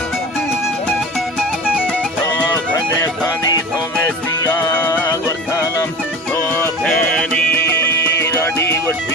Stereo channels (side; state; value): both; normal; correlation 0.34